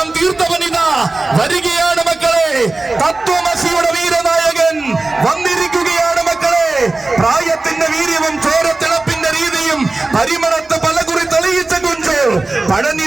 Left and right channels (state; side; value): quieter; left; 3.2 dB